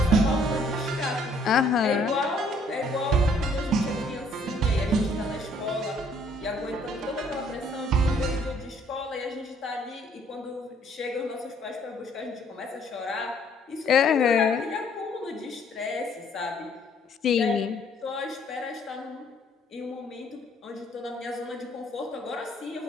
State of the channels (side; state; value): both; normal; correlation 0.63